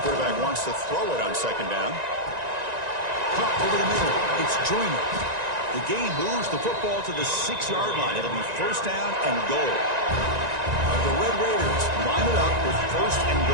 Quarterback wants to throw it on second down. Caught over the middle. It's Joyner. The game moves the football to the 6-yard line. It'll be first down and goal. The Red Raiders line it up with first and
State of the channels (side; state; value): left; late; 1.9 ms